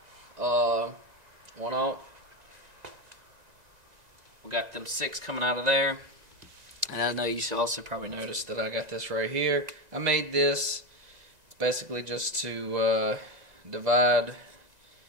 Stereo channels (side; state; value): left; late; 2.0 ms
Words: 1 alt. We got them 6 coming out of there. And I know you should also probably notice that I got this right here. I made this. It's basically just to divide,